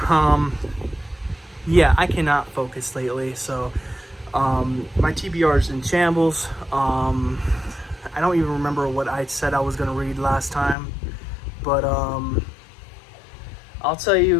Yeah, I cannot focus lately, so my TBR is in shambles. I don't even remember what I said I was gonna read last time, but I'll tell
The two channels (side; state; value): right; drops out; at 10.8 s